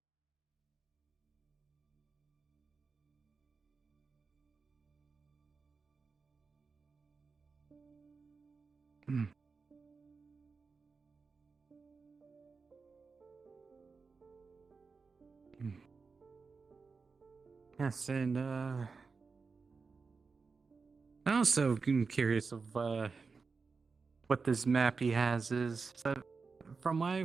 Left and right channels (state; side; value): quieter; left; 4.7 dB